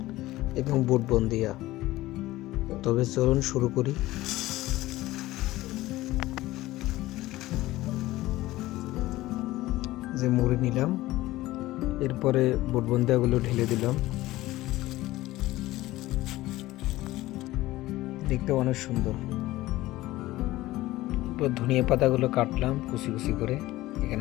এবং বুট বন্দিয়া। তবে চলুন শুরু করি। যে মুড়ি নিলাম, এরপরে বুট বন্দিয়াগুলো ঢেলে দিলাম। দেখতে অনেক সুন্দর। এরপর ধনিয়া পাতাগুলো কাটলাম কুচি কুচি করে,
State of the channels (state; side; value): quieter; right; 17.2 dB